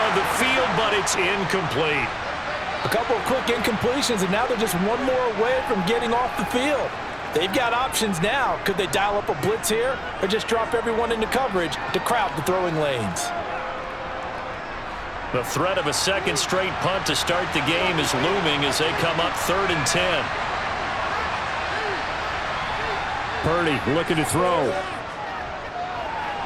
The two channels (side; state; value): both; identical; correlation 1.00